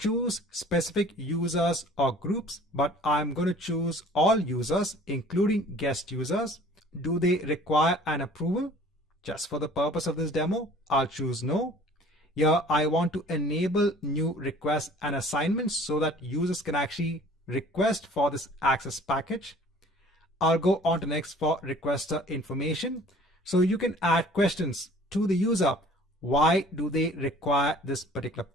specific users or groups, but I'm going to choose all users, including guest users. Do they require an approval? Just for the purpose of this demo, I'll choose no. Here I want to enable new requests and assignments so that users can actually request for this access package. I'll go on to next for requester information. So you can add questions to the user. Why do they require this particular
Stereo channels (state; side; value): normal; both; correlation 0.50